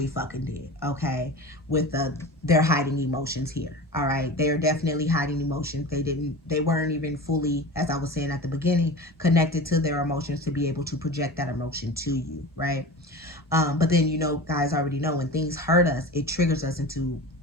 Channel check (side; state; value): both; normal; correlation 0.32